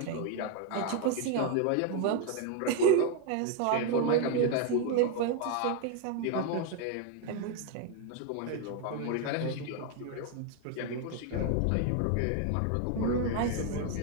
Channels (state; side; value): different; both; correlation 0.01